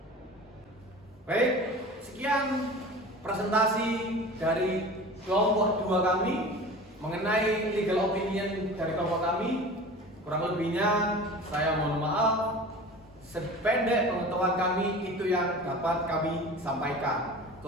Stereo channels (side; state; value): both; normal; correlation 0.37